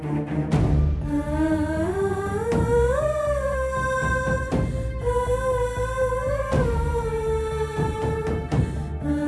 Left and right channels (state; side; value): identical; both; correlation 1.00